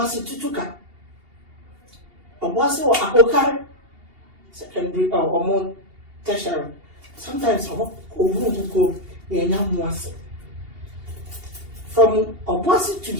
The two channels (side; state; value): left; late; 2.8 ms